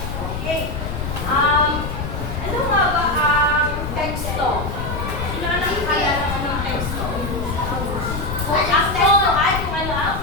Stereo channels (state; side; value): noise; left; rumble, 5 dB below the sound